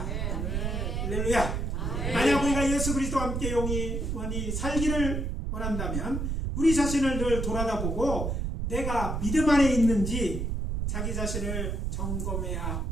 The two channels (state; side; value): noise; right; rumble, 1 dB below the sound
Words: 할렐루야. 만약 우리가 예수 그리스도와 함께 영원히 살기를 원한다면 우리 자신을 늘 돌아다보고 내가 믿음 안에 있는지 자기 자신을 점검해야